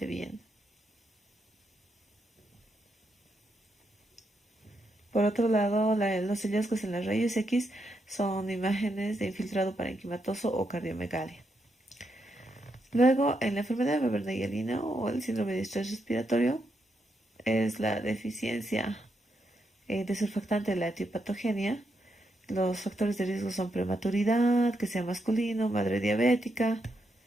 bien. Por otro lado, los hallazgos en las rayos X son imágenes de infiltrado parenquimatoso o cardiomegalia. Luego, en la enfermedad de Weber-Naegeli o el síndrome de estrés respiratorio, es la deficiencia de surfactante de la etiopatogenia. Los factores de riesgo son prematuridad, que sea masculino, madre diabética,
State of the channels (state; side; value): normal; both; correlation 0.81